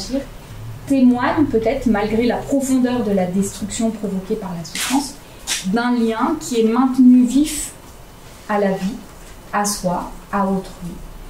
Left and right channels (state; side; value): identical; both; correlation 1.00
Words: témoigne peut-être, malgré la profondeur de la destruction provoquée par la souffrance, d'un lien qui est maintenu vif à la vie, à soi, à autrui.